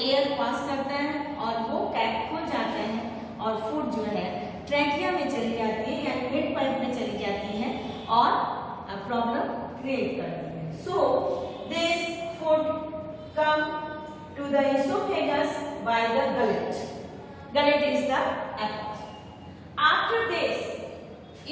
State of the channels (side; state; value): both; identical; correlation 1.00